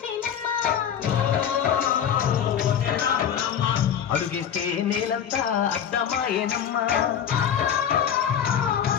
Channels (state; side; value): quieter; right; 8.8 dB